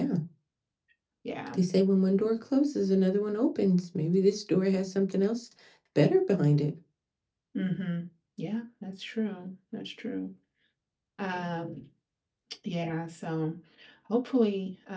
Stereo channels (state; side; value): identical; both; correlation 1.00